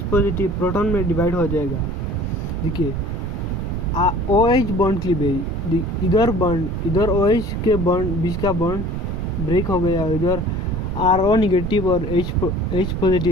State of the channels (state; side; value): noise; right; rumble, 3 dB below the sound